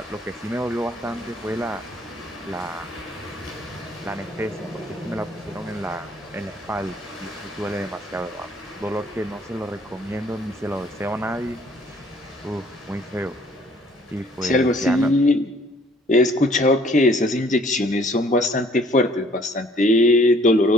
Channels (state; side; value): normal; both; correlation 0.59